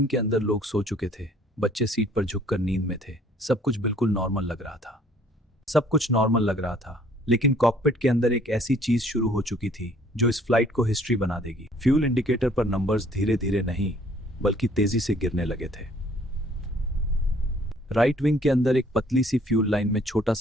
के अंदर लोग सो चुके थे, बच्चे सीट पर झुककर नींद में थे। सब कुछ बिल्कुल नॉर्मल लग रहा था, लेकिन कॉकपिट के अंदर एक ऐसी चीज शुरू हो चुकी थी जो इस फ्लाइट को हिस्ट्री बना देगी। फ्यूल इंडिकेटर पर नंबर्स धीरे धीरे नहीं बल्कि तेजी से गिरने लगे थे। राइट विंग के अंदर एक पतली सी फ्यूल लाइन में छोटा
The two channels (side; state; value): both; normal; correlation 0.59